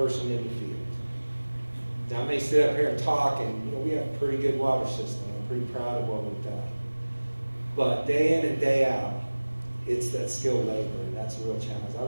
in the field. Now, I may sit up here and talk, and we have a pretty good water system. I'm pretty proud of what we've done. But day in and day out, it's that skilled labor, and that's a real challenge.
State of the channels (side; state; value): both; inverted; correlation -1.00